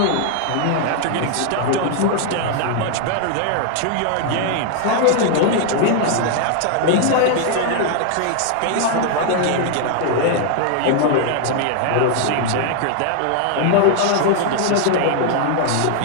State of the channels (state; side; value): different; both; correlation 0.00